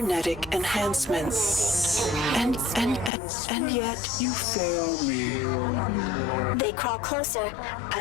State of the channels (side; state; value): right; drops out; at 3.1 s